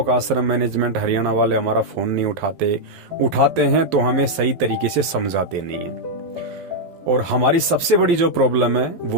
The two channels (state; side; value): late; left; 12 ms